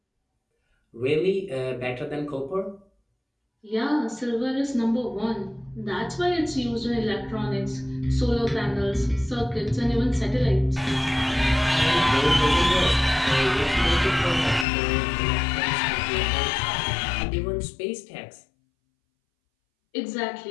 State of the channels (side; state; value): right; drops out; at 14.7 s